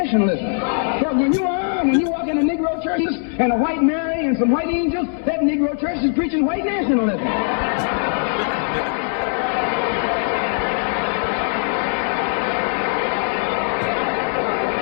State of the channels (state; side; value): silent; right; 58 dB below the other